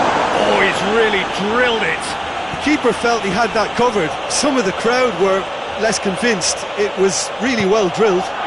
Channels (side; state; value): both; identical; correlation 1.00